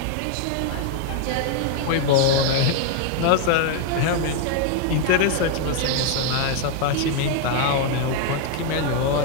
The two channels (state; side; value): different; both; correlation 0.01